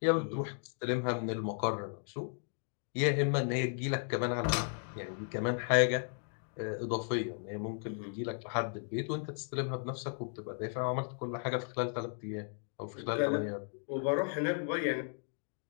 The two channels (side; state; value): right; silent; 54 dB below the other